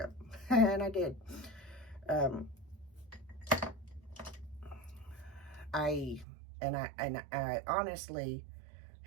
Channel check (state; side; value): drops out; left; at 6.2 s